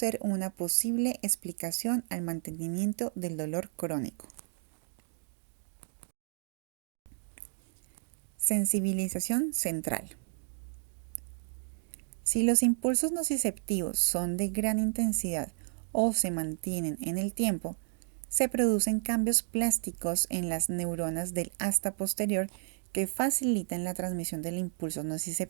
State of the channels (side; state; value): left; silent; digital silence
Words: una posible explicación al mantenimiento del dolor crónico. Sensibilización central. Si los impulsos nociceptivos son de gran intensidad o se mantienen en el tiempo, se producen cambios plásticos en las neuronas del asta posterior que facilitan la transmisión del impulso